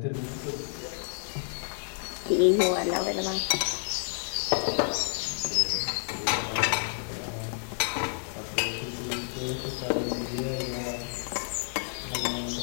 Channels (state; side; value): silent; right; digital silence